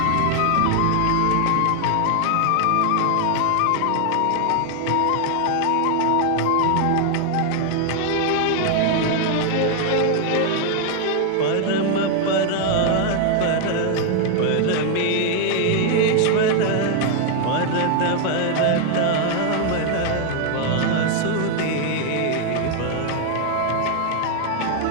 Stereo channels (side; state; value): both; different; correlation 0.00